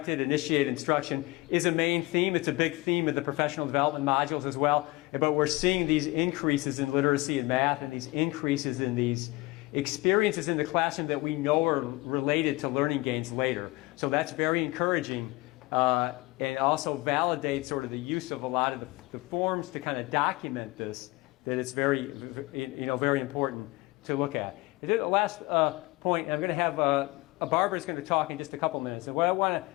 initiated instruction is a main theme. It's a big theme of the professional development modules as well. But we're seeing these increases in literacy and math and these increases in these experiences in the classroom that we know are related to learning gains later. So that's very encouraging and also validates sort of the use of a lot of the forms to kind of document this, that it's very, very important to look at. And then the last point, I'm going to have Barbara's going to talk in just a couple minutes. And what I want to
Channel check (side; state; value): right; quieter; 21.9 dB